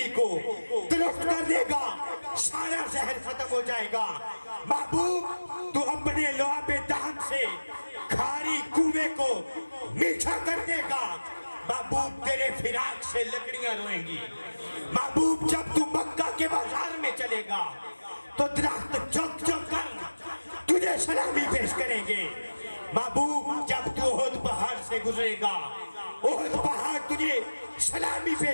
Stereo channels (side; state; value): both; inverted; correlation -1.00